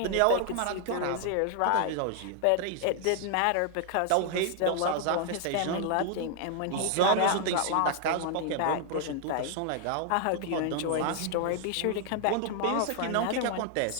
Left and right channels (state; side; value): different; both; correlation 0.00